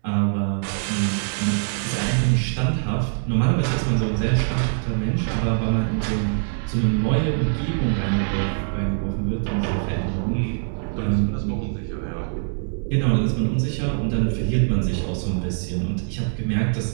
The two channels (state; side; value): silent; left; 63 dB below the other